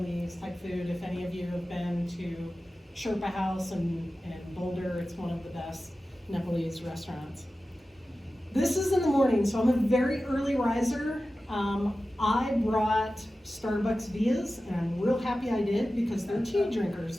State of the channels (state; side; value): normal; both; correlation 0.95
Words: type food. If any of you have been to Sherpa House in Boulder, it's one of the best Nepalese restaurants. This is in the morning, so I'm a very early riser. I brought Starbucks Vias, and I'm real happy I did because they're tea drinkers